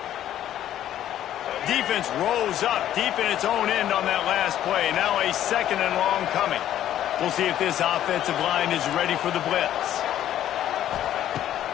Defense rose up deep in its own end on that last play. Now a 2nd and long coming. We'll see if this offensive line is ready for the blitz.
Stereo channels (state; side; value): quieter; right; 11.7 dB